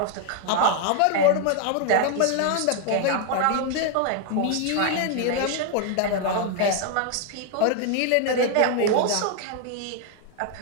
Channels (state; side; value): different; both; correlation 0.00